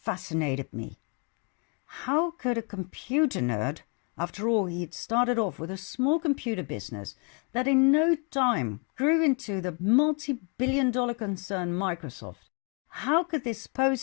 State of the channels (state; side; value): quieter; right; 35.7 dB